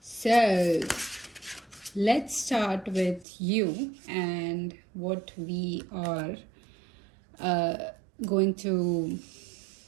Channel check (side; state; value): left; drops out; at 3.2 s